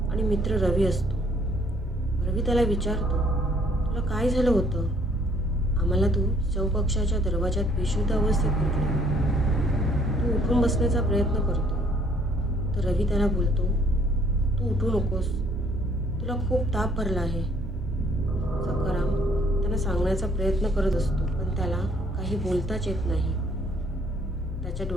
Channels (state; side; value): normal; both; correlation 0.62